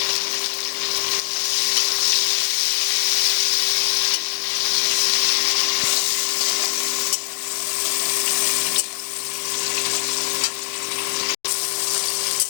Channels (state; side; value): silent; right; 65 dB below the other